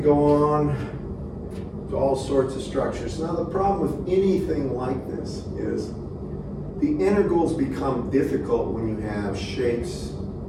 go on to all sorts of structures. Now the problem with anything like this is the integrals become difficult when you have shapes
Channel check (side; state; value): both; identical; correlation 1.00